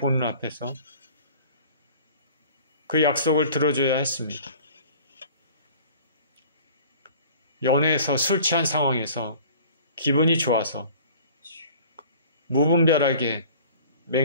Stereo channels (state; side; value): inverted; both; correlation -0.46